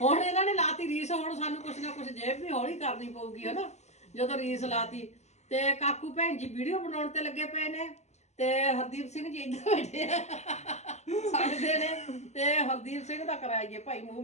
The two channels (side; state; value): right; late; 0.33 ms